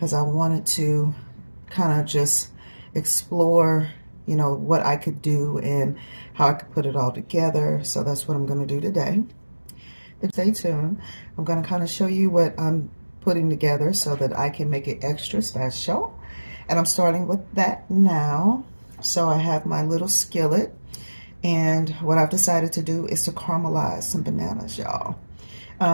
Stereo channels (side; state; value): both; inverted; correlation -1.00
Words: I wanted to kind of just explore, what I could do and how I could put it all together. So that's what I'm going to do today. Stay tuned. I'm going to kind of show you what I'm putting together so that I can make it extra special. And I'm starting with that now. So I have my little skillet, and what I've decided to do is to caramelize some bananas, y'all.